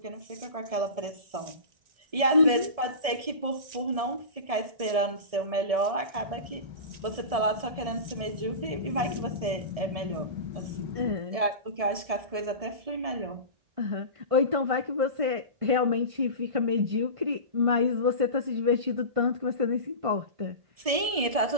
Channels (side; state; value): left; late; 1.7 ms